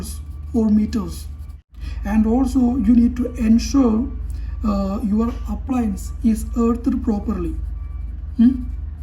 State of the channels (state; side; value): identical; both; correlation 1.00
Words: or meters. And also you need to ensure your appliance is earthed properly.